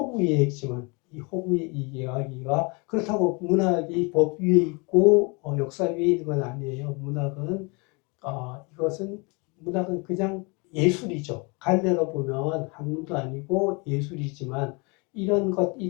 이해이지만 이 허구 이야기가 그렇다고 문학이 법 위에 있고 역사 위에 있는 건 아니에요. 문학은 그냥 예술이죠. 갈래로 보면 학문도 아니고 예술이지만 이런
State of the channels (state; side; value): quieter; right; 30.2 dB